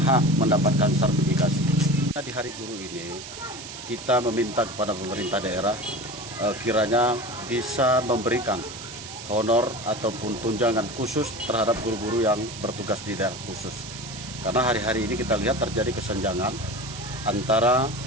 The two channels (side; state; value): right; noise; hiss, 12 dB below the sound